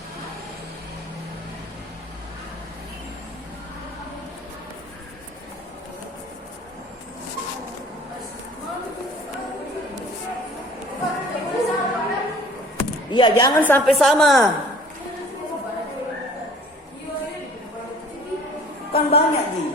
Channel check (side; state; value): both; normal; correlation 0.50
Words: Iya, jangan sampai sama. Kan banyak nih.